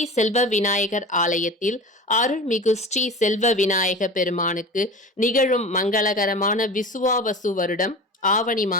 செல்வ விநாயகர் ஆலயத்தில் அருள்மிகு ஸ்ரீ செல்வ விநாயக பெருமானுக்கு நிகழும் மங்களகரமான விசுவாவசு வருடம் ஆவணி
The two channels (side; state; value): both; normal; correlation 0.33